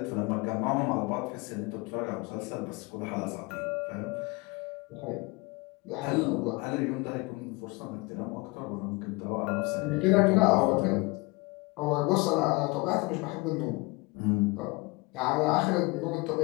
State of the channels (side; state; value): right; quieter; 25.5 dB